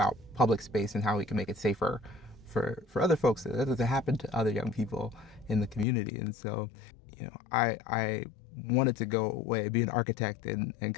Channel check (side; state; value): right; drops out; at 5.9 s